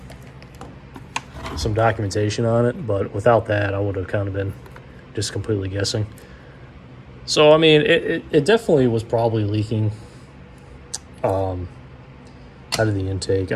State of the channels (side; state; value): both; identical; correlation 1.00